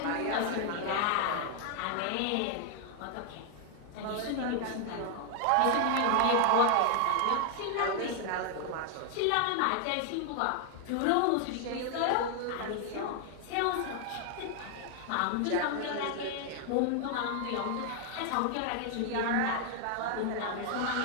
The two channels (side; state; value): both; different; correlation 0.00